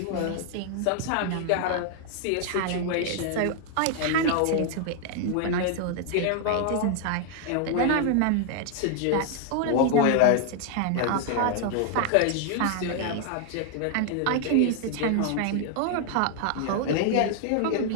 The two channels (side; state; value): both; different; correlation 0.00